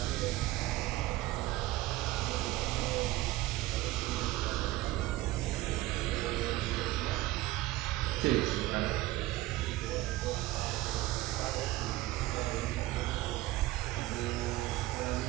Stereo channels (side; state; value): left; quieter; 17.3 dB